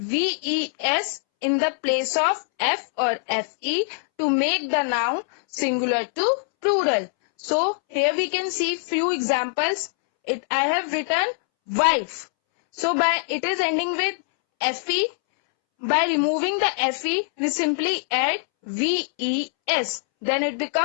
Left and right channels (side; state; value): right; silent; 63 dB below the other